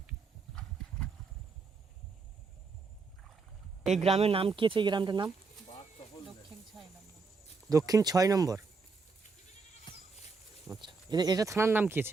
এই গ্রামের নাম কি আছে? এই গ্রামটার নাম দক্ষিণ 6 নম্বর। আচ্ছা, এটা থানার নাম কি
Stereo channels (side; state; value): left; quieter; 4.5 dB